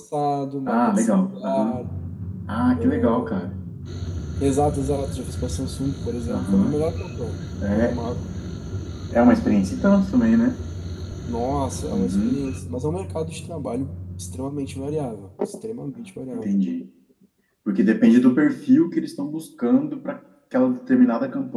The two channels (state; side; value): identical; both; correlation 1.00